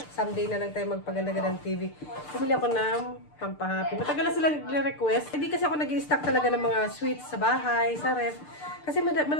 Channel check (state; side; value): late; right; 6.7 ms